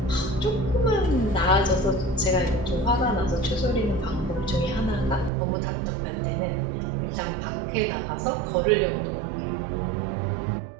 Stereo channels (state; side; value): drops out; left; at 5.3 s